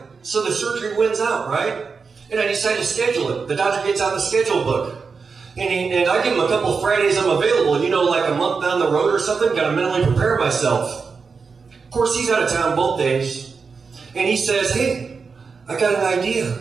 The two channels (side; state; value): left; quieter; 5.1 dB